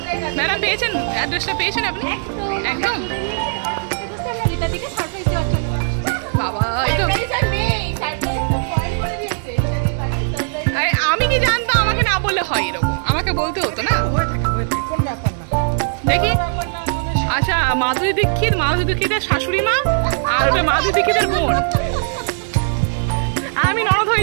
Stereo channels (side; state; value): left; silent; digital silence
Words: ম্যাডাম পেয়েছেন অ্যাড্রেসটা? পেয়েছেন আপনি? একদম রীতাদিকে সারপ্রাইজ দেওয়ার জন্য। বাবা, এই তো আরে আমি কি জানতাম? আমাকে না বললে হয় এরকম? আমাকে বলতে হতো না। দেখি, আচ্ছা মাধুরী দীক্ষিতের শাশুড়ি মা, আর ওটা মাধুরী দীক্ষিতের বোন। আমি ননদ